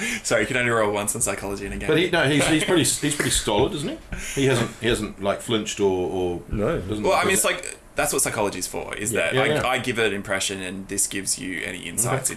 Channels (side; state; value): both; identical; correlation 1.00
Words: Sorry, you can only roll once on psychology in a game. But he's pretty stolid, isn't he? He hasn't like flinched or No. doesn't. Well, I mean, it's like that's what psychology's for. Is that Yeah. I give it an impression, and this gives you any insights